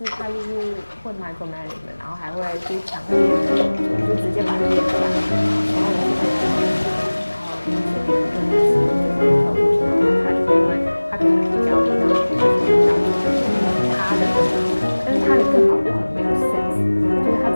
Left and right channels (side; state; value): both; inverted; correlation -1.00